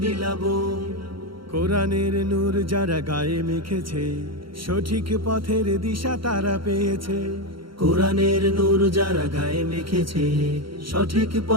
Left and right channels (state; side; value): late; left; 0.74 ms